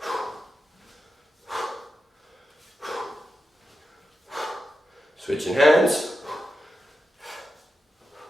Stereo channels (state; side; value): normal; both; correlation 0.90